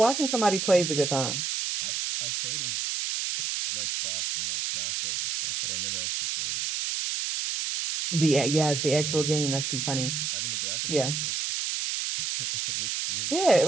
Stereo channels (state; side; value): noise; right; hiss, 1 dB below the sound